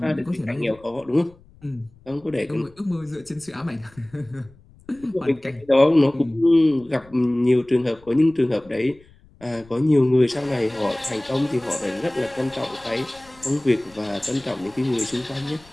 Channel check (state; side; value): noise; left; rumble, 27 dB below the sound